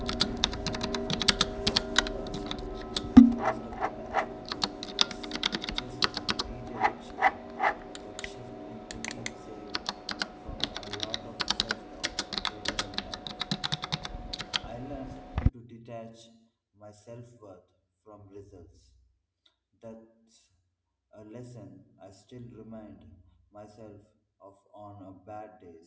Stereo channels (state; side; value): identical; both; correlation 1.00